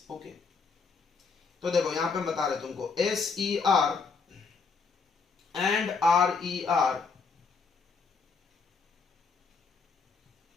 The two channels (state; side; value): quieter; right; 4.9 dB